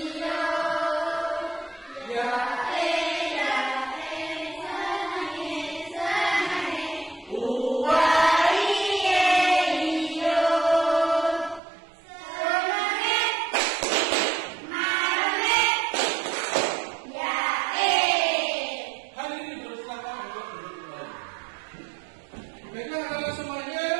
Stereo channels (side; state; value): left; drops out; at 11.6 s